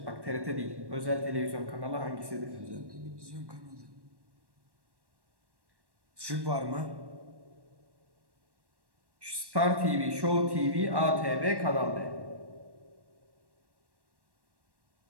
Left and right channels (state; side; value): late; left; 1.1 ms